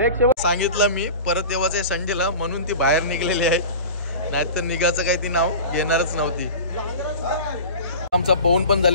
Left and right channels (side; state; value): both; inverted; correlation -0.34